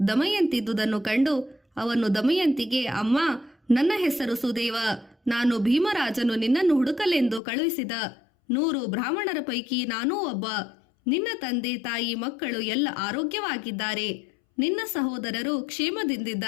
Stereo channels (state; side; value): drops out; right; at 7.4 s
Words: ದಮಯಂತಿದ್ದುದನ್ನು ಕಂಡು ಅವನು ದಮಯಂತಿಗೆ, ಅಮ್ಮ, ನನ್ನ ಹೆಸರು ಸುದೇವ. ನಾನು ಭೀಮರಾಜನು ನಿನ್ನನ್ನು ಹುಡುಕಲೆಂದು ಕಳುಹಿಸಿದ 100 ಬ್ರಾಹ್ಮಣರ ಪೈಕಿ ನಾನೂ ಒಬ್ಬ. ನಿನ್ನ ತಂದೆ ತಾಯಿ ಮಕ್ಕಳು ಎಲ್ಲ ಆರೋಗ್ಯವಾಗಿದ್ದಾರೆ. ನಿನ್ನ ಸಹೋದರರು